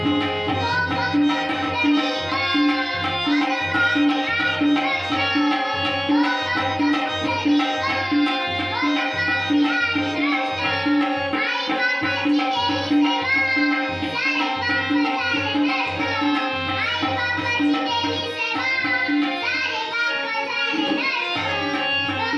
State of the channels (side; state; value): both; identical; correlation 1.00